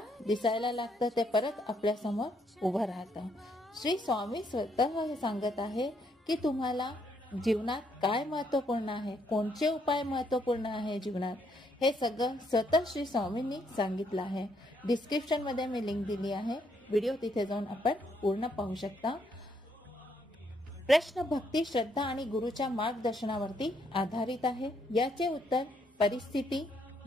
दिसायला लागतं, ते परत आपल्या समोर उभं राहतं। श्री स्वामी स्वतः हे सांगत आहे की तुम्हाला जीवनात काय महत्वपूर्ण आहे, कोणते उपाय महत्वपूर्ण आहे जीवनात, हे सगळं स्वतः श्री स्वामींनी सांगितलं आहे। डिस्क्रिप्शन मध्ये मी लिंक दिली आहे, व्हिडिओ तिथे जाऊन आपण पूर्ण पाहू शकता। प्रश्न भक्ती, श्रद्धा आणि गुरुच्या मार्गदर्शनावरती आधारित आहे। याचे उत्तर परिस्थिती,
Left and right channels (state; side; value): normal; both; correlation 0.73